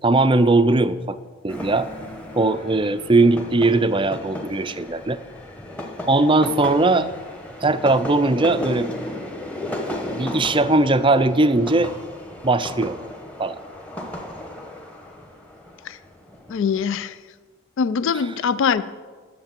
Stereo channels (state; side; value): normal; both; correlation 0.51